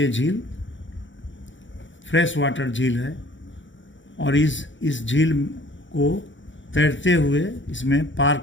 झील फ्रेश वाटर झील है। और इस झील को तैरते हुए इसमें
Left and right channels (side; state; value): right; late; 0.55 ms